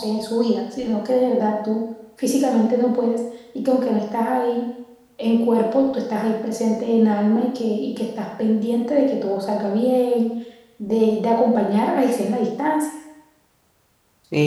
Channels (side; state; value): both; identical; correlation 1.00